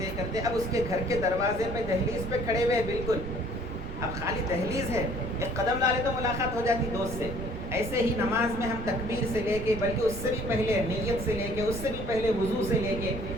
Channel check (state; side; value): noise; right; rumble, 8 dB below the sound